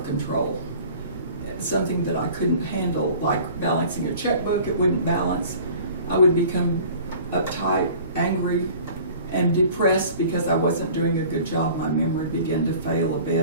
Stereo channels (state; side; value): inverted; both; correlation -0.46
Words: control. Something that I couldn't handle, like balancing a checkbook, it wouldn't balance. I would become uptight, angry, and depressed because I wasn't doing a good job. My memory began to fail a